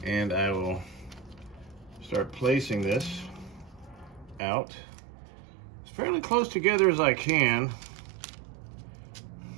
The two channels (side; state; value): left; drops out; at 4.4 s